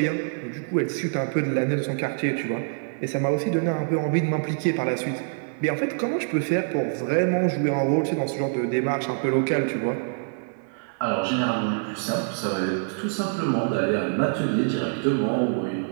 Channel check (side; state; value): left; silent; 61 dB below the other